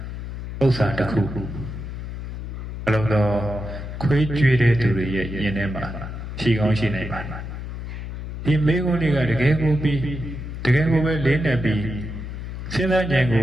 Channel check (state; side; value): noise; left; hum, 8 dB below the sound